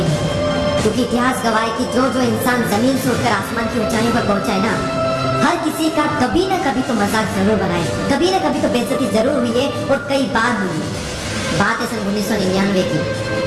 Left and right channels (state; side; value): identical; both; correlation 1.00